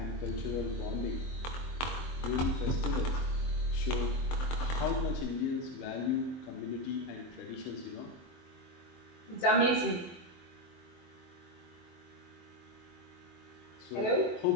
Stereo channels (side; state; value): right; late; 23 ms